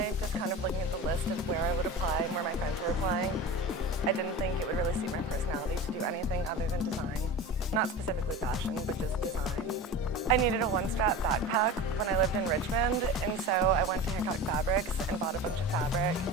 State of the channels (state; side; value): normal; both; correlation 0.31